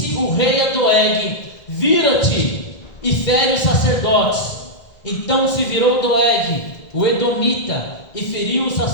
o rei a Doeg: vira-te e fere os sacerdotes. Então se virou Doeg, o Edomita, e feriu os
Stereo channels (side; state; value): right; late; 2.1 ms